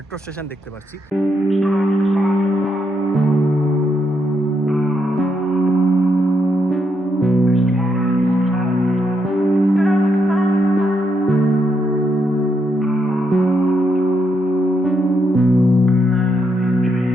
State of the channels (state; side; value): normal; both; correlation 0.79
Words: স্টেশন দেখতে পাচ্ছি।